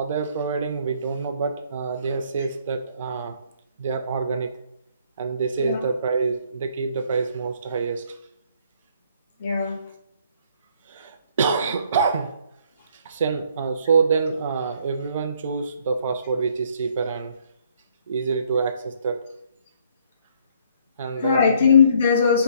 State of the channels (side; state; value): both; inverted; correlation -0.64